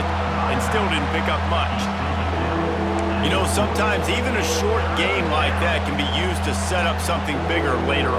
and still didn't pick up much. You know, sometimes even a short game like that can be used to set up something bigger later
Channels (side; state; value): both; identical; correlation 1.00